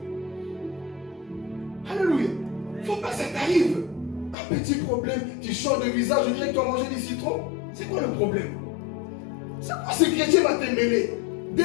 Alléluia. Il ne faut pas que ça t'arrive. Un petit problème, tu changes de visage, je dirais que tu as mangé du citron. C'est quoi le problème? C'est quoi ce chrétien va te mêler? Des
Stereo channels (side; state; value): right; drops out; at 4.4 s